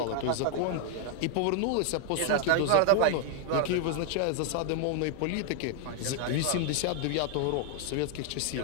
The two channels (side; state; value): both; different; correlation 0.00